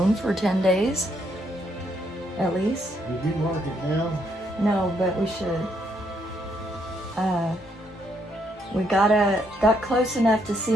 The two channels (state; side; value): normal; both; correlation 0.74